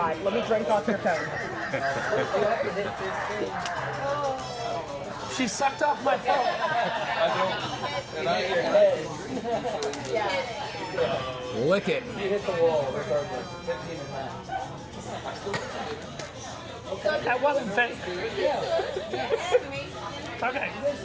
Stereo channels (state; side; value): identical; both; correlation 1.00